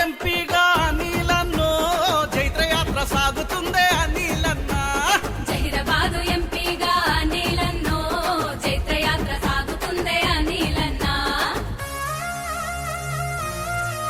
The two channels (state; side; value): identical; both; correlation 1.00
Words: ఎంపీగా అనిలన్నో జైత్రయాత్ర సాగుతుందే అనిలన్న. జహీరాబాదు ఎంపీగా అనిలన్నో జైత్రయాత్ర సాగుతుందే అనిలన్న.